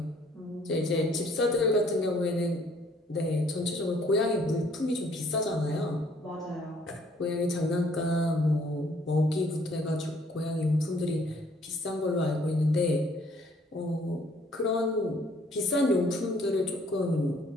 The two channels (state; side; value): normal; both; correlation 0.62